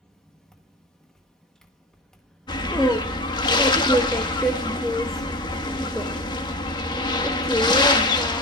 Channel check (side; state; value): both; normal; correlation 0.28